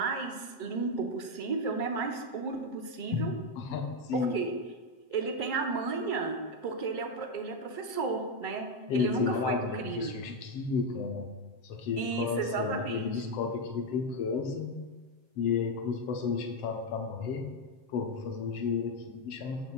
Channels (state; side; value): late; right; 7.6 ms